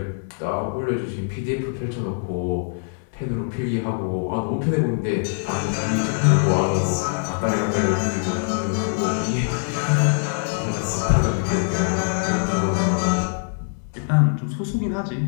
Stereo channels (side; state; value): right; silent; 63 dB below the other